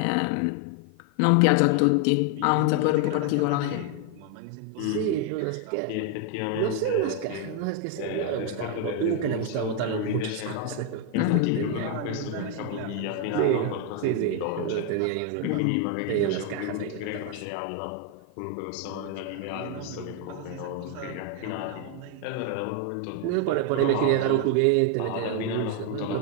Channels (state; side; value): different; both; correlation 0.01